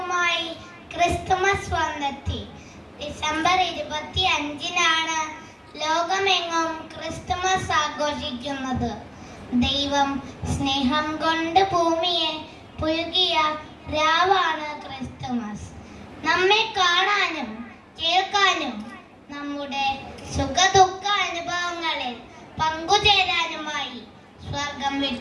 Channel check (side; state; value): both; identical; correlation 1.00